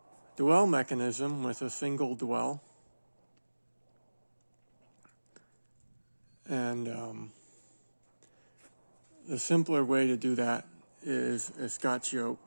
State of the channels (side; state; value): both; inverted; correlation -1.00